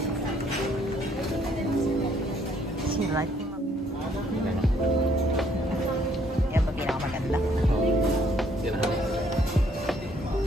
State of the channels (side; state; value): both; normal; correlation 0.66